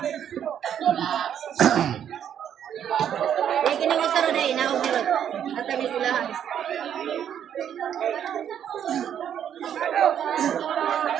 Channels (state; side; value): quieter; left; 9.4 dB